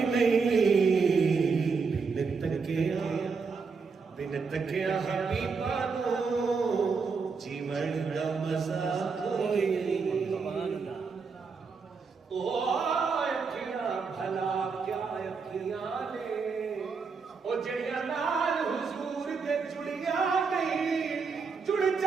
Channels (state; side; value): quieter; left; 5.0 dB